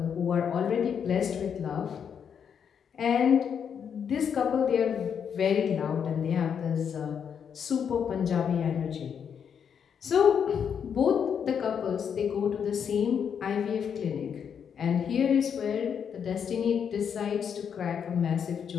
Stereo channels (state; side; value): quieter; right; 7.5 dB